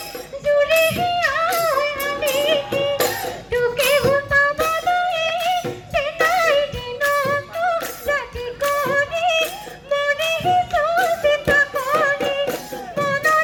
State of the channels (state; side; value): identical; both; correlation 1.00